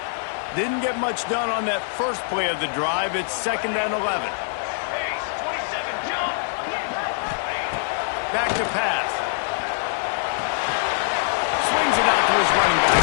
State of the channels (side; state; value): right; silent; digital silence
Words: Didn't get much done on that first play of the drive. It's 2nd and 11. Back to pass. Swings it out to his running back.